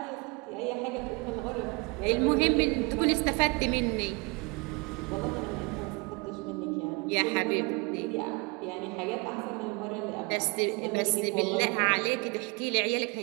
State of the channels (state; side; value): quieter; left; 29.6 dB